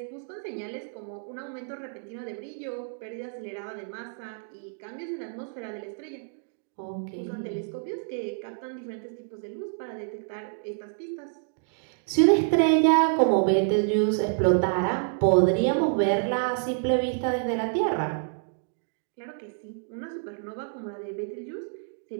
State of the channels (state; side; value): silent; left; digital silence